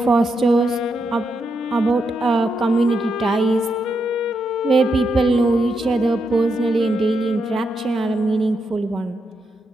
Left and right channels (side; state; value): both; normal; correlation 0.83